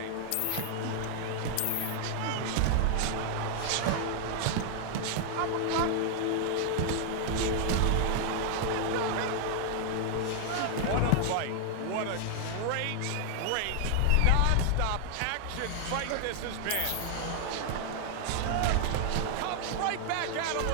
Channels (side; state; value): both; different; correlation 0.00